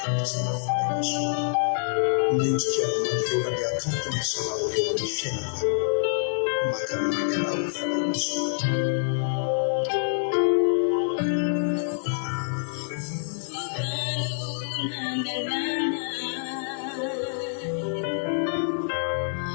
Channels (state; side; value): silent; right; digital silence